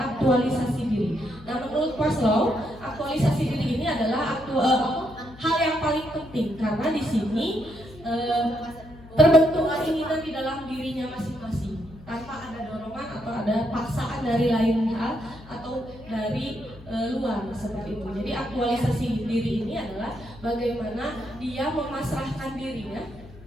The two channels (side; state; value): left; noise; hum, 20 dB below the sound